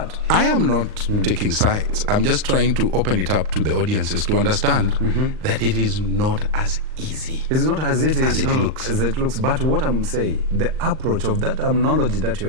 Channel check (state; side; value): late; left; 39 ms